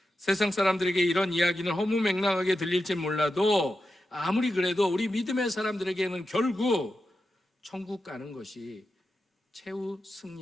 세상 사람들에게 이런 이야기는 허무맹랑하게 들릴지 몰라도 아무리 그래도 우리 믿음의 사람들에게는 결국 천국 가는 것이 최후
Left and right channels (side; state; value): both; normal; correlation 0.90